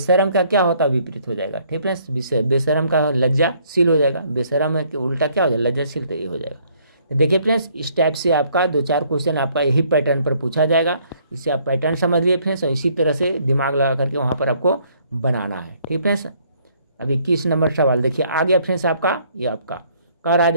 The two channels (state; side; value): inverted; both; correlation -0.64